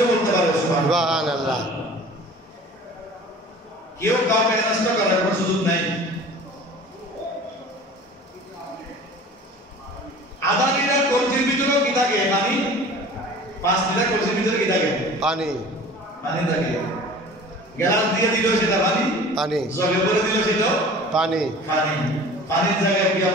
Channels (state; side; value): normal; both; correlation 0.43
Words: বলতে পারে। সুবহানাল্লাহ। কেউ কাউকে নষ্ট করার কোনো সুযোগ নাই। আধা লিটার কলসির ভিতরেও কি থাকে? পানি। 5 লিটার কলসির ভিতরে কি থাকে? পানি। পানি থাকে। গ্লাস দিয়ে দিল সেটা পানি, পানি। জগে ভরে দিল সেটা পানি। পানি। পানির জায়গায় কি